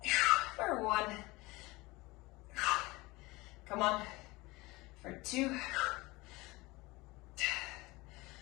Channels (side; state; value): right; quieter; 22.2 dB